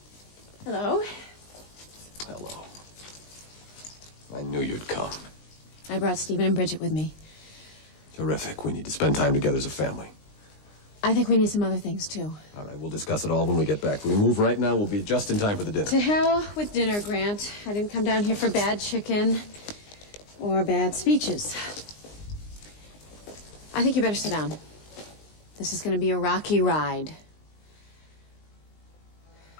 Hello. Hello. I knew you'd come. I brought Stephen and Bridget with me. Terrific. We need to spend time together as a family. I think we need some other things, too. All right, we'll discuss it all when we get back. If we move right now, we'll be just in time for the dinner. To hell with dinner, Grant. I didn't come down here for bad chicken or bad speeches. I think you better sit down. This is going to be a rocky ride.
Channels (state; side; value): late; right; 19 ms